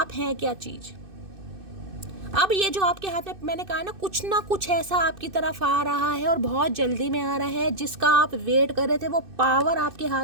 हैं क्या चीज़। अब ये जो आपके हाथ में मैंने कहा ना कुछ ऐसा आपकी तरफ आ रहा है और बहुत जल्दी में आ रहा है, जिसका आप वेट कर रहे थे, वो पावर आपके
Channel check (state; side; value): late; left; 2.6 ms